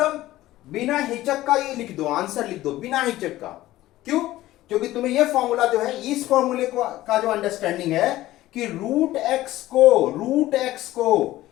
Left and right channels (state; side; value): quieter; right; 15.9 dB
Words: बिना हिचक का ये लिख दो, आंसर लिख दो बिना हिचक का। क्यों? क्योंकि तुम्हें ये फॉर्मूला जो है, इस फॉर्मूले का जो अंडरस्टैंडिंग है कि रूट एक्स को